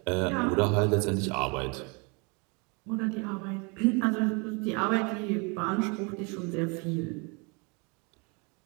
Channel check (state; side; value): quieter; left; 32.0 dB